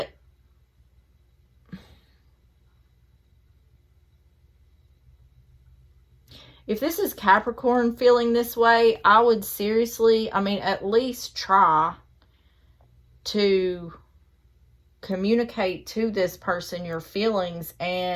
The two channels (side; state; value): both; identical; correlation 1.00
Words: if this is Capricorn feeling this way, I would seriously, at least try to communicate to this person your feelings